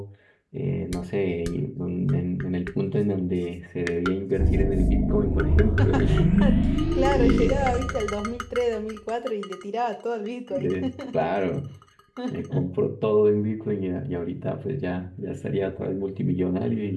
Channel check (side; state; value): both; identical; correlation 1.00